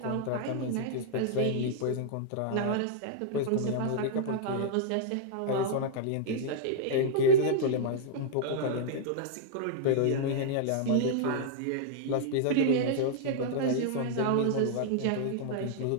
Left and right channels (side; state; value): both; different; correlation -0.01